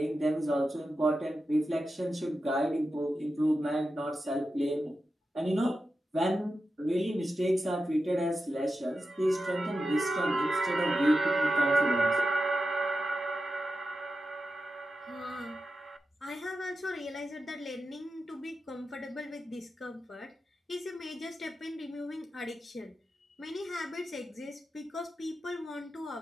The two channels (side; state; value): both; normal; correlation 0.91